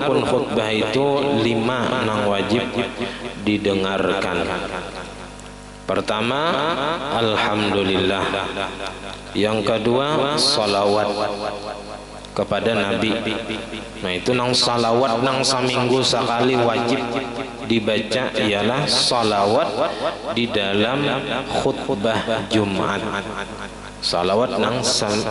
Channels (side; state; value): both; identical; correlation 1.00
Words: khutbah itu 5 nang wajib didengarkan. Pertama, alhamdulillah. Yang kedua, salawat kepada Nabi. Nah itu nang salawat nang seminggu sekali wajib dibaca ialah salawat di dalam khutbah Jumat. Salawat nang